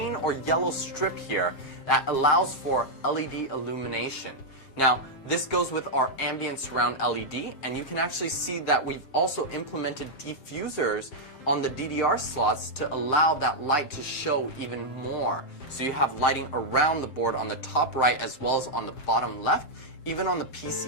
or yellow strip here that allows for LED illumination. Now, this goes with our ambient surround LED, and you can actually see that we've also implemented diffusers on the DDR slots to allow that light to show even more. So you have lighting around the board on the top right as well as on the bottom left, even on the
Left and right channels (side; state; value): right; late; 7.5 ms